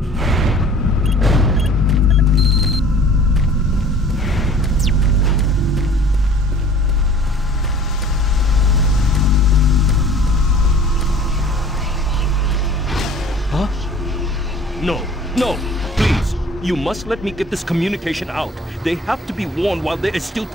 Huh? No, no, please. You must let me get this communication out. They have to be warned while there is still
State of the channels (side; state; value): both; normal; correlation 0.49